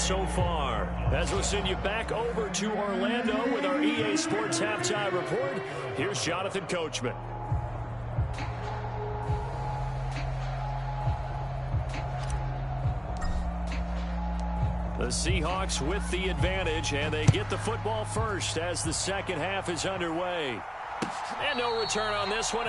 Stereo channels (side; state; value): both; identical; correlation 1.00